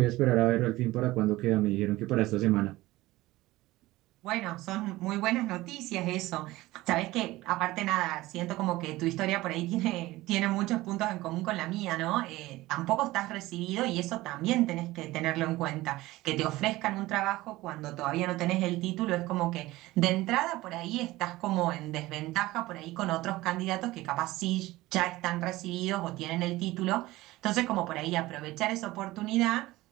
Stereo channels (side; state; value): left; quieter; 18.3 dB